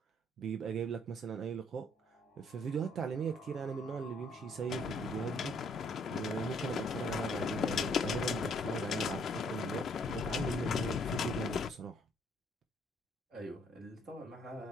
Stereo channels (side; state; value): both; normal; correlation 0.65